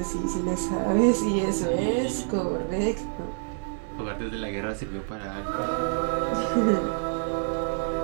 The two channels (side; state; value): left; silent; digital silence